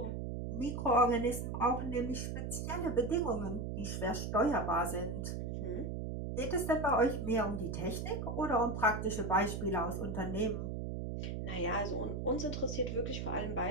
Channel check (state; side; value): noise; right; hum, 4 dB below the sound